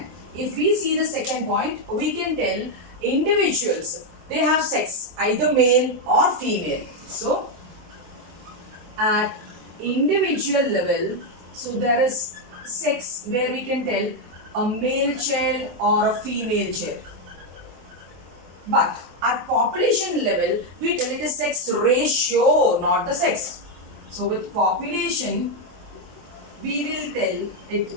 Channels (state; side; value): late; left; 23 ms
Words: if we see the second point, we can tell individuals, they have sex, either male or female. So at individual level, so there is sex where we can tell a male child or a female child. But at population level, we tell it is sex ratio, not the sex. So with population, we will tell it